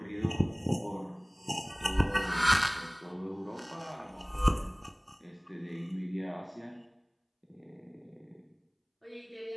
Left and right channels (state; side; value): identical; both; correlation 1.00